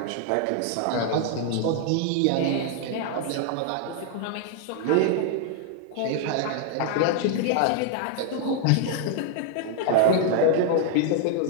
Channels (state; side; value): different; both; correlation -0.01